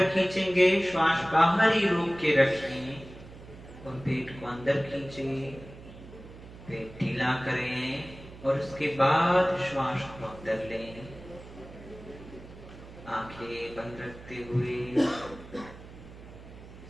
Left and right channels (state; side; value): noise; right; hum, 17 dB below the sound